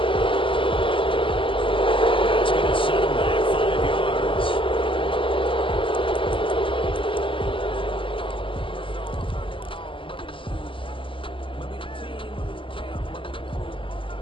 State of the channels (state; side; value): late; right; 0.25 ms